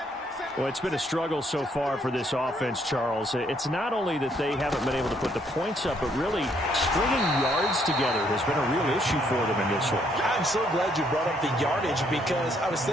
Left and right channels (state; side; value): normal; both; correlation 0.70